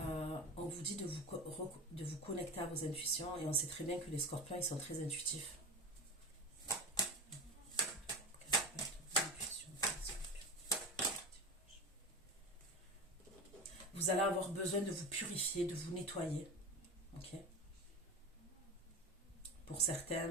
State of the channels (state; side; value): normal; both; correlation 0.26